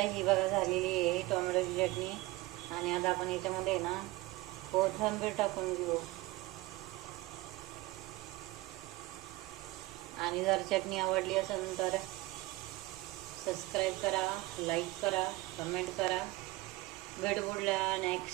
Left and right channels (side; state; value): left; quieter; 20.0 dB